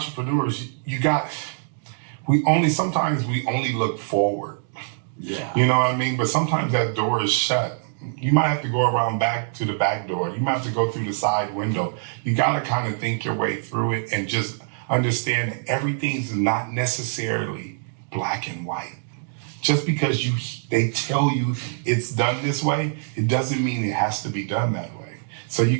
sometimes we only look forward. Yeah. You know what I mean? But sometimes that door is shut. You might have to go around back to the back door. You might have to go through the side window. You got to kind of think your way through it and just understand that everything's not necessarily black and white. Just because they tell you it's done this way, it doesn't mean it has to be done that way. So you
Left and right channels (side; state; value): left; silent; digital silence